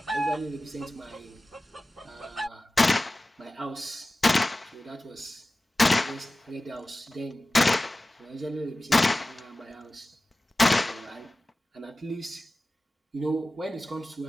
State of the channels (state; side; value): normal; both; correlation 0.96